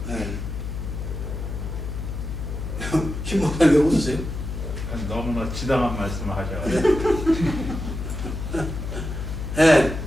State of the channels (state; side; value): noise; left; hum, 5 dB below the sound